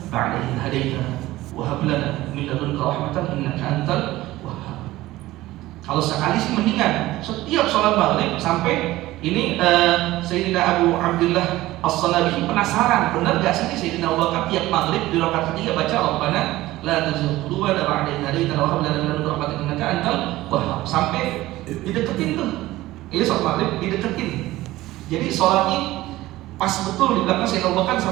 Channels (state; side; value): quieter; left; 17.1 dB